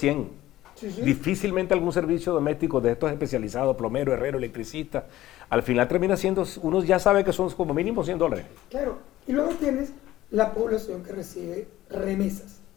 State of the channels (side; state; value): right; quieter; 15.1 dB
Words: Sí. Difícilmente algún servicio doméstico de estos especializados, plomero, herrero, electricista, al final termina siendo, uno ya sabe que son como mínimo $100. Claro, y luego tienes la población que recibe remesas,